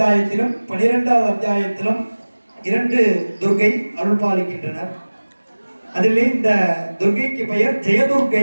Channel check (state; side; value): inverted; both; correlation -1.00